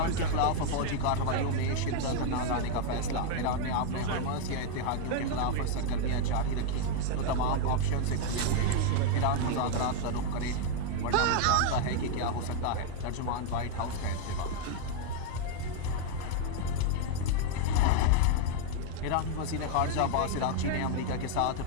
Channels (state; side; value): different; both; correlation 0.01